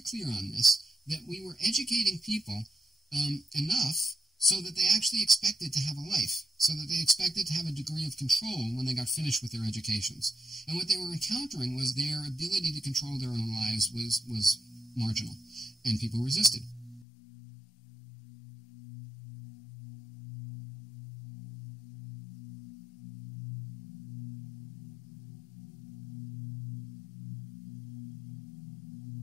clear on this, that we were educating people enough so that they actually expected to have a life, so that they expected to have a degree of control when they got finished with their educations. And what they were encountering was their ability to control their own lives was marginal, and people resisted.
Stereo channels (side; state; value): right; drops out; at 17.1 s